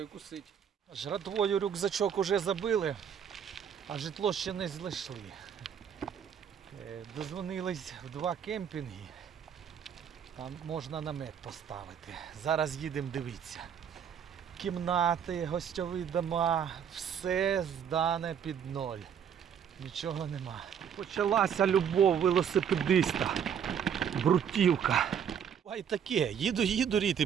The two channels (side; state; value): left; quieter; 8.1 dB